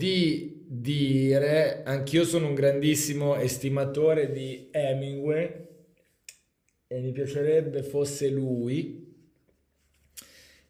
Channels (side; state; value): both; identical; correlation 1.00